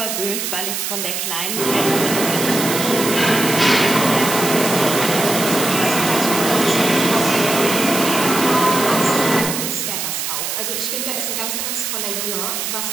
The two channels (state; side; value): noise; right; hiss, 3 dB below the sound